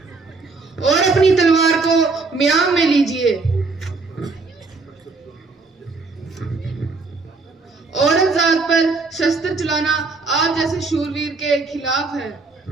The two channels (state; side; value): quieter; left; 3.9 dB